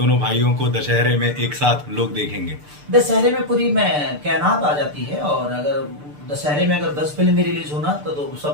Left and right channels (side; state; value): left; late; 6.8 ms